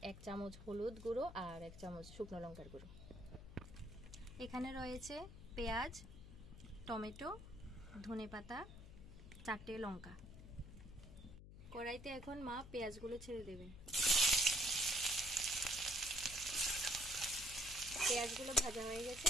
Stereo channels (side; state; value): left; noise; hum, 14 dB below the sound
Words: 1 চামচ হলুদ গুঁড়ো আর 1 চামচ শুকনো লঙ্কার গুঁড়ো। এখানে রয়েছে পেঁয়াজ, টমেটো, ধনেপাতা, 4টে লঙ্কা। কড়াইতে এখন মা পেঁয়াজগুলো ছেড়ে দেবে। পেঁয়াজগুলো ভাজা হয়ে গেছে,